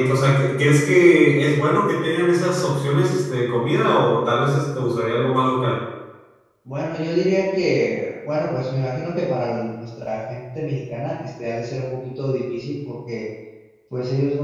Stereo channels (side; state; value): both; identical; correlation 1.00